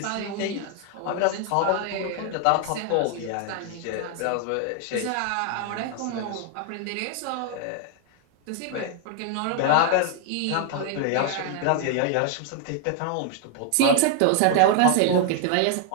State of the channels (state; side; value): different; both; correlation 0.00